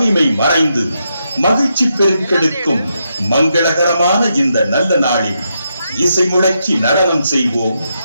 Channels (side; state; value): both; inverted; correlation -0.82